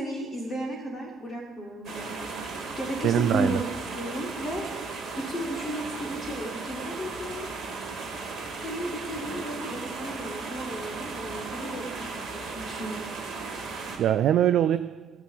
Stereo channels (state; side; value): quieter; left; 5.4 dB